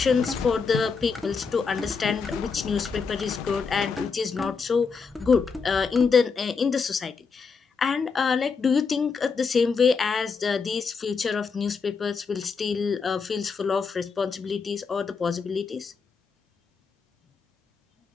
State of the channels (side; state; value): right; quieter; 5.2 dB